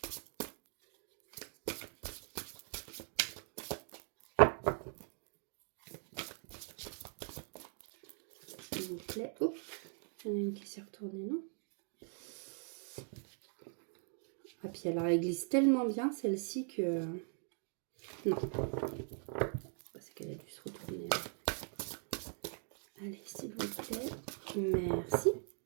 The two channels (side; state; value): left; silent; 50 dB below the other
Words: S'il vous plaît. Oh, il y en a une qui s'est retournée, non? Ah, puis alors, elle glisse tellement bien, celle-ci, que... Non. C'est qu'elle a dû se retourner. Allez, s'il vous plaît. Merci.